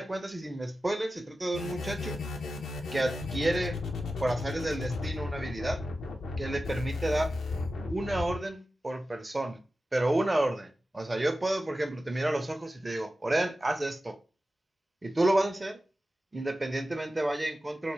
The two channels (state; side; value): normal; both; correlation 0.93